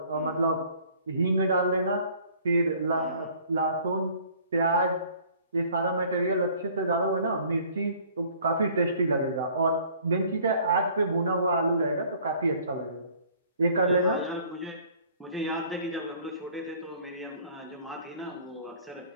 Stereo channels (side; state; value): both; inverted; correlation -0.55